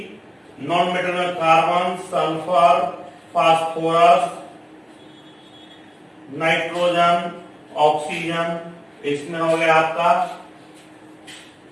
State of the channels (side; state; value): both; identical; correlation 1.00